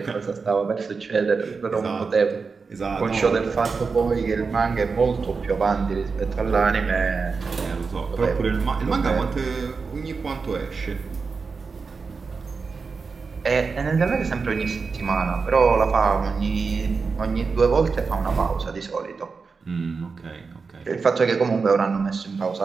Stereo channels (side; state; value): left; quieter; 4.8 dB